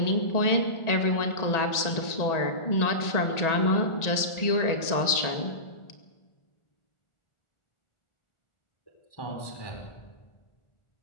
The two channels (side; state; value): right; late; 1.8 ms